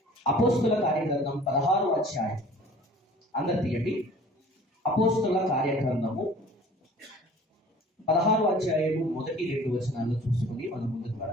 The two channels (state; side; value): normal; both; correlation 0.48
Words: 16వ అధ్యాయం. అందరు తీయండి. అపోస్తుల కార్యగ్రంథము 16వ అధ్యాయము 1-2 వచనాలను చూసుకుని మనం ముందుకు